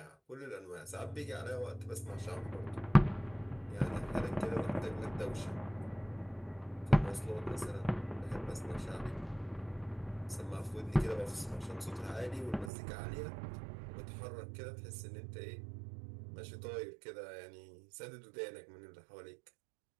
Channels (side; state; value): left; drops out; at 12.7 s